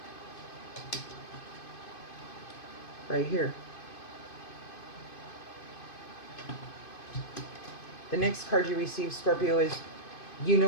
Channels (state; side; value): late; right; 2.5 ms